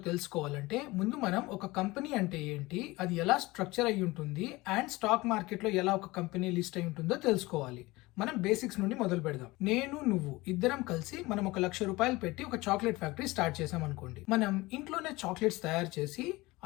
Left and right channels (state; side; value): quieter; right; 21.2 dB